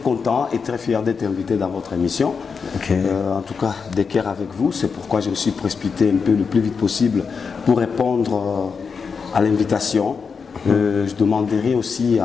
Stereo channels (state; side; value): quieter; right; 5.6 dB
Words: et très fier d'être invité dans votre émission. Okay. En tout cas, d'équerre avec vous. C'est pourquoi je me suis précipité un peu le plus vite possible pour répondre à l'invitation. Je demanderai aussi